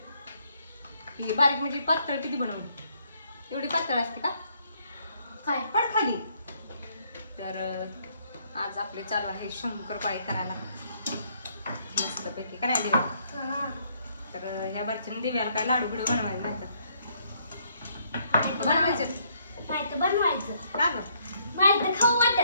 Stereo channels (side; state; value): both; inverted; correlation -0.69